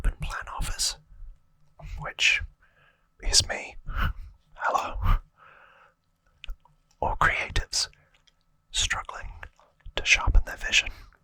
plan office, which is me, hello, or creatives struggling to sharpen their vision,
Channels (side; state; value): both; identical; correlation 1.00